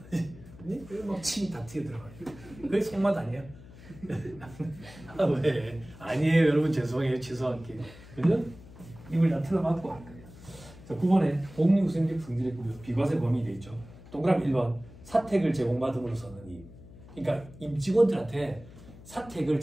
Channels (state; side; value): noise; left; hum, 19 dB below the sound